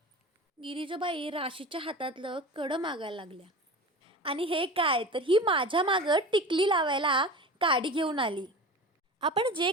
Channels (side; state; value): both; normal; correlation 0.33